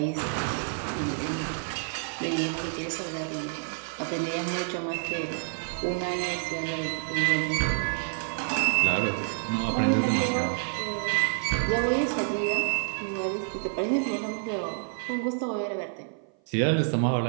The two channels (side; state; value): left; silent; 56 dB below the other